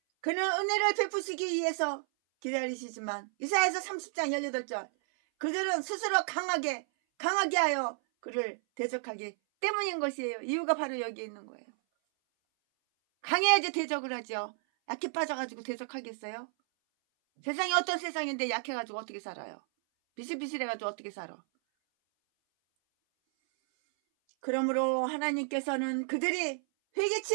그는 은혜를 베푸시기 위해서 기다리시지만 이사야서 30장 18절 그들은 스스로 강하게 하여 그를 대적하기 때문인 것이에요. 이유가 바로 여기에 있는 거예요. 강해야지 대적을 하죠. 약해 빠져가지고 대적하겠어요? 세상이 어떤 세상인데 약해가지고 어떻게 살아요? 비실비실해가지고 어떻게 살아? 그러므로 하나님께서는 그들이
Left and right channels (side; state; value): left; silent; 56 dB below the other